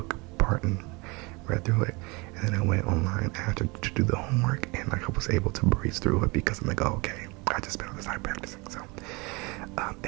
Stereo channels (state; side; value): quieter; left; 26.8 dB